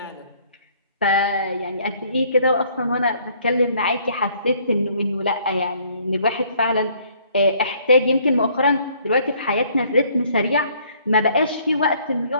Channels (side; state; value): both; inverted; correlation -0.62